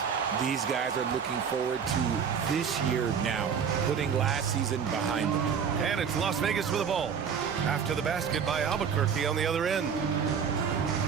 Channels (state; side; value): quieter; left; 7.0 dB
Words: These guys are looking forward to this year now, putting last season behind them. And it's Las Vegas with the ball. After the basket by Albuquerque on the other end.